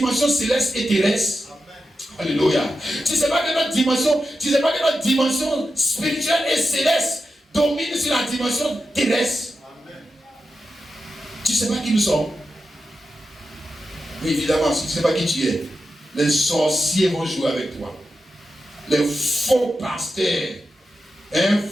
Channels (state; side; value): normal; both; correlation 0.90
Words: céleste et terrestre. Alléluia. Tu ne sais pas que notre dimension spirituelle et céleste domine sur la dimension terrestre. Tu ne sais pas qui nous sommes. Mais évidemment, si tu ne sais pas qui tu es, les sorciers vont jouer avec toi. Les faux pasteurs,